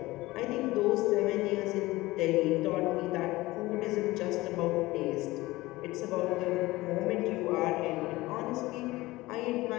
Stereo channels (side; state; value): right; quieter; 19.4 dB